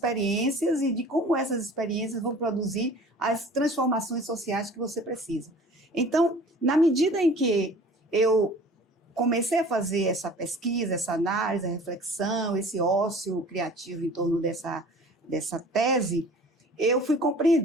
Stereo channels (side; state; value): both; normal; correlation 0.46